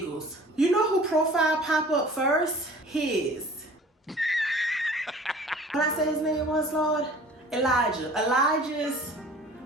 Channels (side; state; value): both; normal; correlation 0.47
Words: You know who profile pop up first? His. When I say his name was, Lord? Elijah. Elijah's